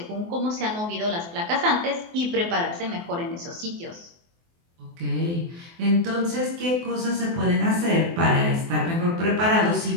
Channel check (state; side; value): late; left; 24 ms